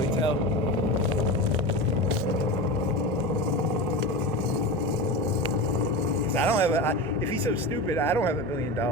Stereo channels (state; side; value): noise; right; hum, 22 dB below the sound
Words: tell. I don't have if he's so stupid, I don't have $1 billion